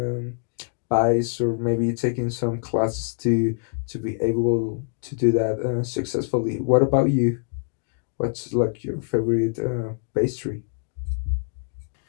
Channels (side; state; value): right; silent; digital silence